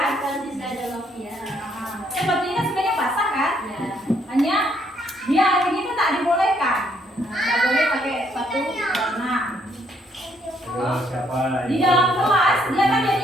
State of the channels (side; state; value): both; normal; correlation 0.70